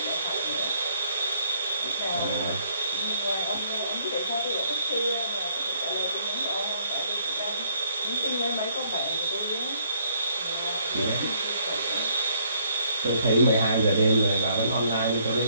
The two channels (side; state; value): both; inverted; correlation -0.67